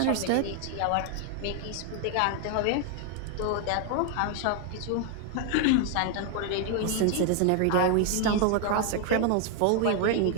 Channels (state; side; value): different; both; correlation 0.00